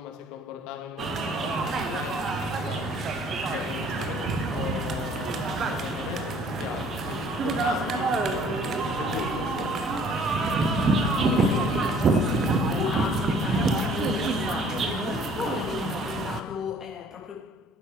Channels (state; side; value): normal; both; correlation 0.56